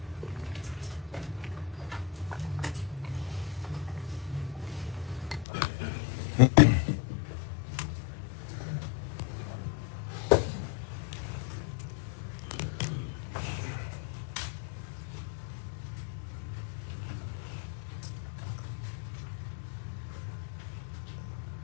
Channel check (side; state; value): right; drops out; at 5.5 s